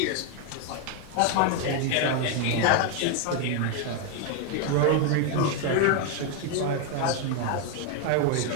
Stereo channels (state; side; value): different; both; correlation 0.01